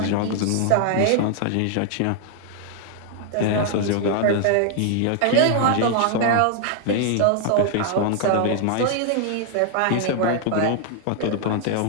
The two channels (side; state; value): both; different; correlation 0.00